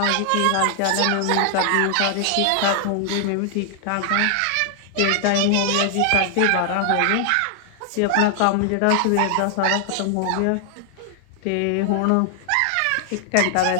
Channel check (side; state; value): both; different; correlation 0.00